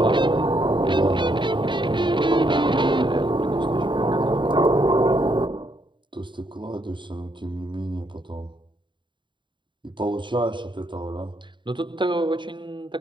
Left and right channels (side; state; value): left; late; 0.23 ms